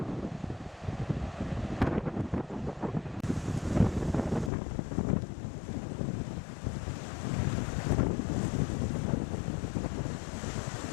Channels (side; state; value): right; drops out; at 4.5 s